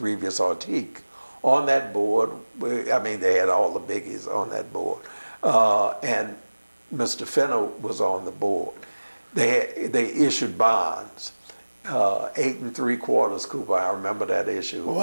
Ortiz. On that board, they had all the biggies on that board, and Mr. Finner was on the board. They issued bonds, 8 3/4 coupon. I remember that issue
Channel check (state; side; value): inverted; both; correlation -1.00